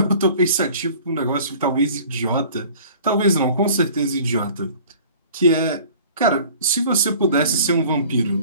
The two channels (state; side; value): inverted; both; correlation -0.47